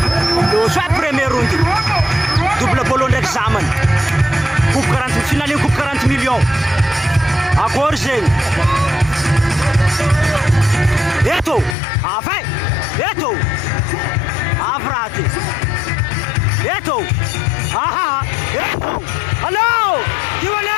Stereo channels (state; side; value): drops out; right; at 11.8 s